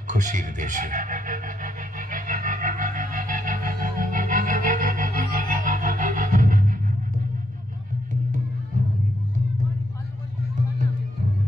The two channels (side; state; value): both; normal; correlation 0.77